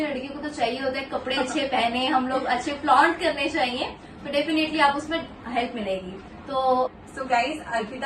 लड़की को तो चाहिए होता है कपड़े अच्छे पहने, हम लोग अच्छे फ्लॉन्ट करने चाहिए, तो डेफिनेटली आप उसमें हेल्प मिलेगी। सो गाइज,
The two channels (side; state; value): both; identical; correlation 1.00